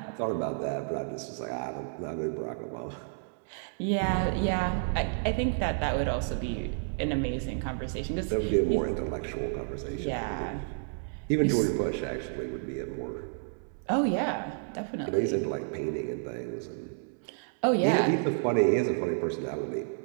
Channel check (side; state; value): left; silent; digital silence